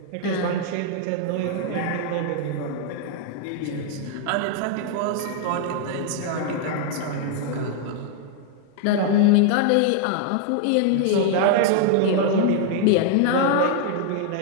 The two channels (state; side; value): different; both; correlation -0.01